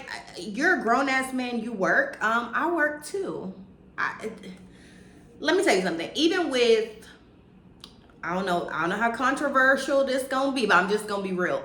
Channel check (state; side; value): identical; both; correlation 1.00